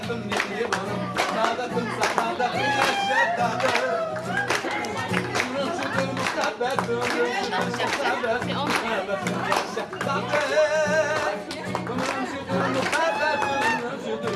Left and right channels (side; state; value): both; identical; correlation 1.00